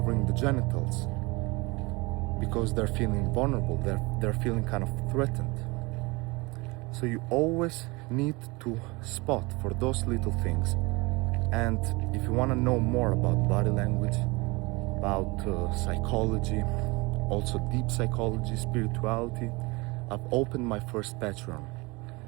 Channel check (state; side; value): quieter; left; 25.1 dB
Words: the genitals, because they're feeling vulnerable, they're feeling kind of threatened. So you always need to spot for those little things. And if you want to know more about body language, about psychology, also deep psychology, spirituality, I've opened my first Patreon,